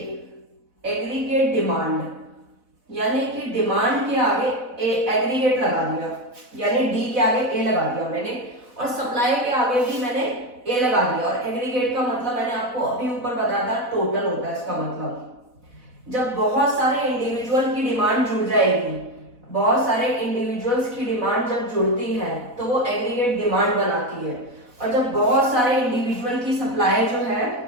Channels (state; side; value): late; left; 4.1 ms